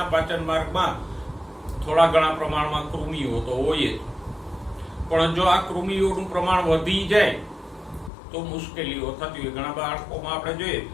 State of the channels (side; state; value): right; drops out; at 8.1 s